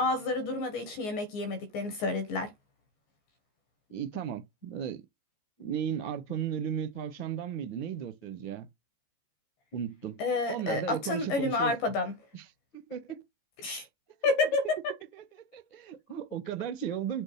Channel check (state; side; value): late; right; 14 ms